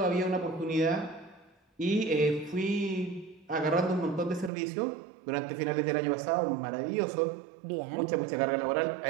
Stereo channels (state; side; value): drops out; left; at 4.5 s